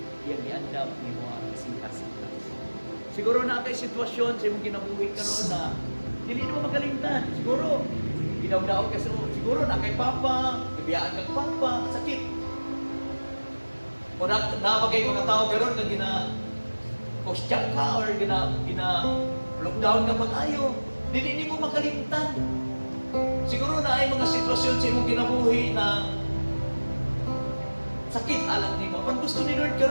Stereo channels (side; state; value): both; inverted; correlation -1.00